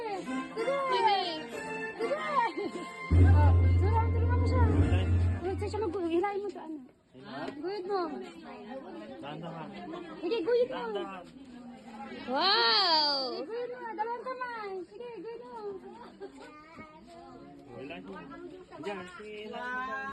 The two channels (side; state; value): both; identical; correlation 1.00